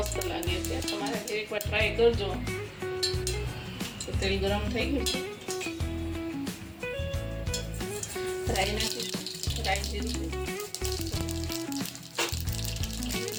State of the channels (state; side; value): identical; both; correlation 1.00